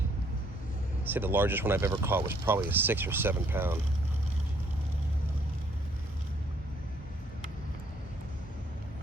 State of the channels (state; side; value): normal; both; correlation 0.65